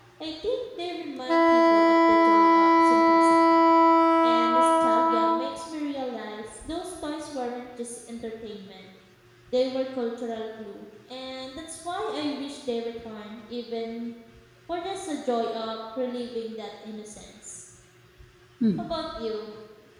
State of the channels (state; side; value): identical; both; correlation 1.00